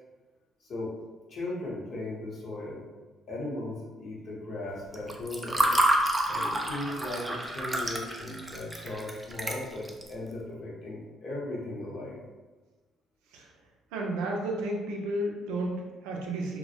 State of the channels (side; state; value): both; normal; correlation 0.76